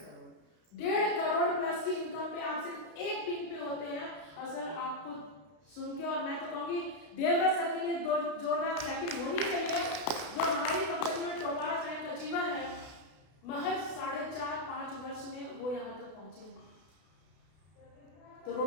करोड़ प्लस की इनकम पे आप सिर्फ एक पिन पे होते हैं। और सर आपको सुन के, और मैं तो कहूँगी देवव्रत सर के लिए जोरदार क्लैपिंग होनी चाहिए, जो हमारी कंपनी में टॉपर रैंक अचीवर है। महज 4.5-5 वर्ष में वो यहाँ तक पहुंचे हैं। तो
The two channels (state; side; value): late; right; 32 ms